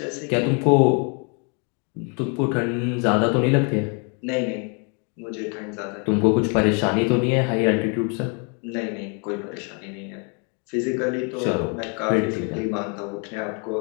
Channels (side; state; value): right; quieter; 36.4 dB